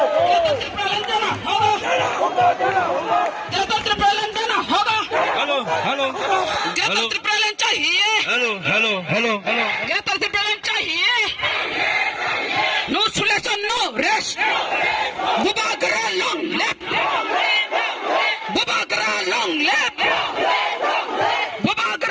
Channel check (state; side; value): identical; both; correlation 1.00